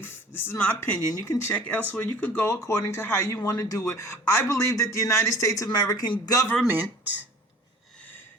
this is my opinion, you can check elsewhere, you could go according to how you want to do it. I believe that the United States American government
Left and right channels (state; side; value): normal; both; correlation 0.47